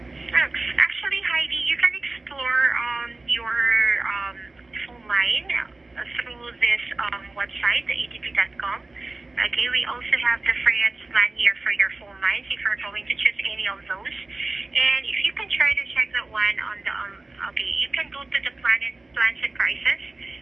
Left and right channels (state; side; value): quieter; left; 3.2 dB